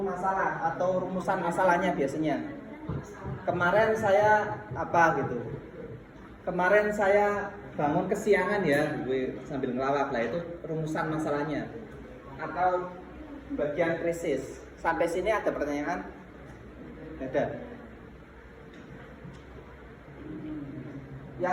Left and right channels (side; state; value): both; identical; correlation 1.00